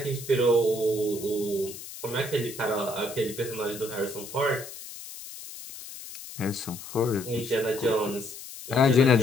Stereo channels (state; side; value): noise; left; hiss, 13 dB below the sound